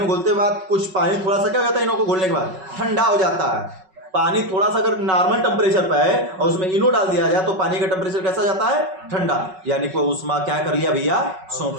घोलते बाद कुछ पानी थोड़ा सा क्या हो जाता है? इनो को घोलने के बाद ठंडा हो जाता है। पानी थोड़ा सा अगर नॉर्मल टेम्परेचर पर है और उसमें इनो डाल दिया जाए तो पानी का टेम्परेचर कैसा जाता है? ठंडा। यानी कि उष्मा क्या कर लिया भैया?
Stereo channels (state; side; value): late; left; 5.3 ms